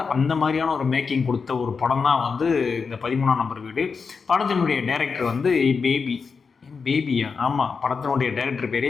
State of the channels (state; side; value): quieter; right; 5.3 dB